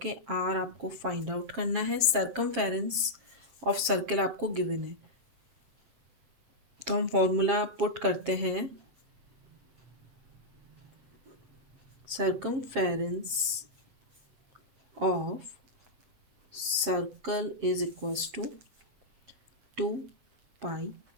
आर आपको फाइंड आउट करना है, सर्कमफेरेंस ऑफ सर्कल आपको गिवन है। तो हम फॉर्मूला पुट करते हैं, circumference of circle is equals to 2 pi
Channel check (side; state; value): left; late; 7.4 ms